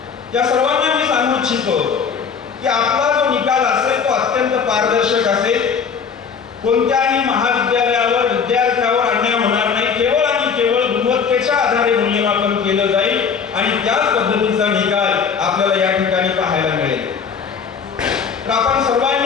या सर्वांना मी सांगू इच्छितो की आपला जो निकाल असेल तो अत्यंत पारदर्शक असेल. कोणत्याही महाविद्यालयावर विद्यार्थ्यावर अन्याय होणार नाही. केवळ आणि केवळ गुणवत्तेच्या आधारे मूल्यमापन केलं जाईल आणि त्याच पद्धतीचा निकाल आपल्याला या ठिकाणी पाहायला मिळेल. तर आपण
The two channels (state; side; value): quieter; right; 6.3 dB